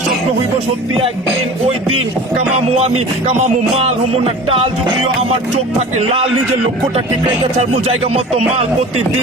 স্বপ্ন হইব সত্যি একদিন, ওই দিন কামামু আমি কামামু মাল হমু না টাল। যদিও আমার চোখ থাকে লাল, নিজের লক্ষ্যটা ঠিক রেখে ছাড়বো জায়গা মতো মাল।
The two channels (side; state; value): both; normal; correlation 0.39